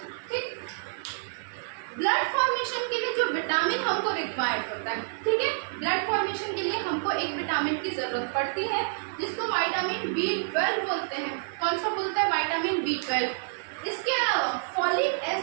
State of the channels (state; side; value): silent; left; 58 dB below the other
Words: ठीक। ब्लड फॉर्मेशन के लिए जो विटामिन हमको रिक्वायर्ड होता है, ठीक है, ब्लड फॉर्मेशन के लिए हमको एक विटामिन की जरूरत पड़ती है जिसको विटामिन B12 बोलते हैं। कौन सा बोलते हैं? Vitamin B12। इसके अलावा फॉलिक